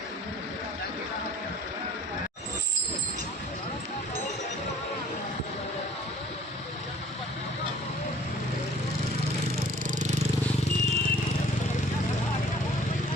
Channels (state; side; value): normal; both; correlation 0.53